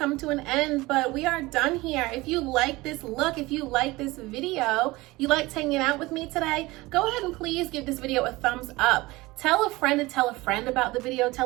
to an end, but we are done here. If you like this look, if you like this video, you liked hanging out with me today, go ahead and please give this video a thumbs up. Tell a friend to tell a friend about the video.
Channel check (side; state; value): left; quieter; 20.8 dB